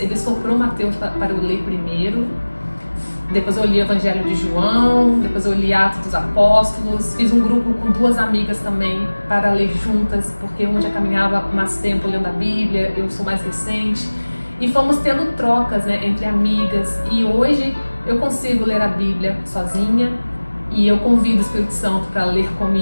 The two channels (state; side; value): inverted; both; correlation -1.00